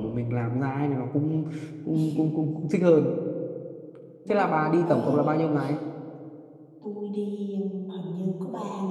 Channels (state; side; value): identical; both; correlation 1.00